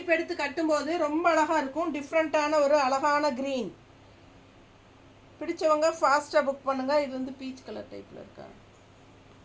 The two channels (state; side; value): identical; both; correlation 1.00